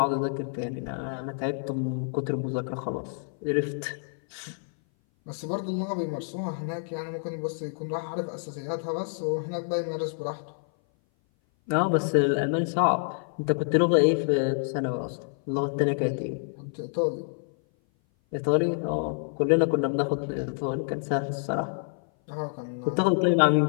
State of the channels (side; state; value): right; silent; 57 dB below the other